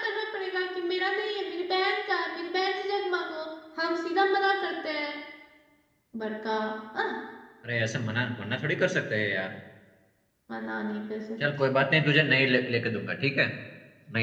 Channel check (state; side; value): identical; both; correlation 1.00